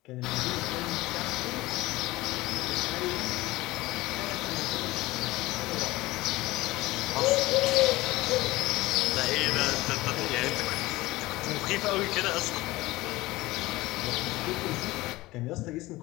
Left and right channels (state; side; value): quieter; right; 19.4 dB